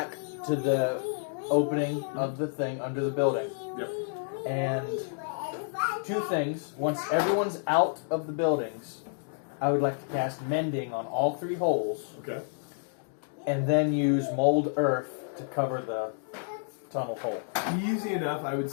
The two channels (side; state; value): right; silent; digital silence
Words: to the opening of the thing under the building. Yep. And two things. Once everyone's out of the buildings, I would like to cast Mending on all three holes. Okay. And then use Mold Earth to cover the tunnel hole. Easy enough, I would